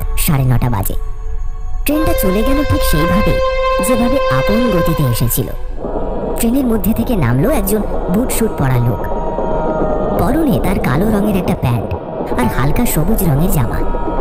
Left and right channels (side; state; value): both; identical; correlation 1.00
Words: 9:30 বাজে। ট্রেনটা চলে গেল ঠিক সেইভাবে যেভাবে আপন গতিতে এসেছিল। ট্রেনের মধ্যে থেকে নামলো একজন বুট শুট পরা লোক। পরনে তার কালো রঙের একটা প্যান্ট আর হালকা সবুজ রঙের জামা,